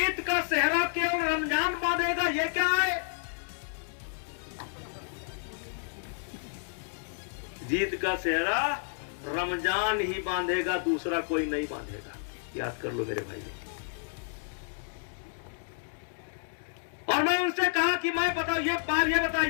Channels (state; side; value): silent; right; digital silence